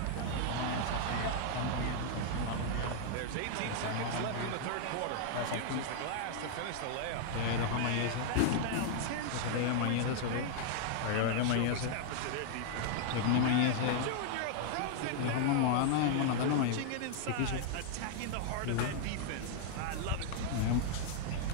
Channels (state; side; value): different; both; correlation -0.01